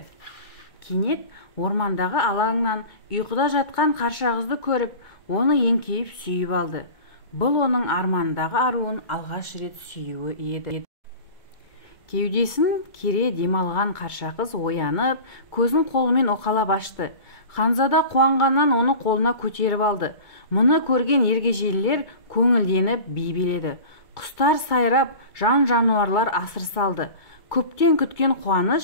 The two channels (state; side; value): late; right; 2.2 ms